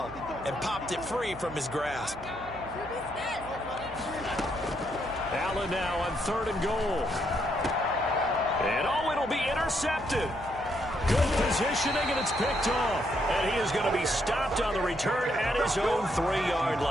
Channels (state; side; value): noise; right; hum, 16 dB below the sound